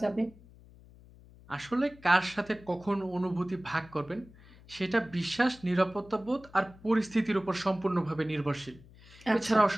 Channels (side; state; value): left; noise; hum, 23 dB below the sound